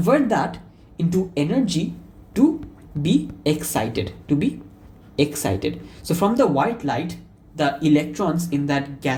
that into energy to be excited, So from the white light, the electrons in that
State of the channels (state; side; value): identical; both; correlation 1.00